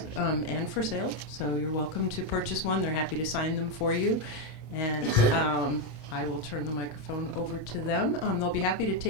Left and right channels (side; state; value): right; late; 27 ms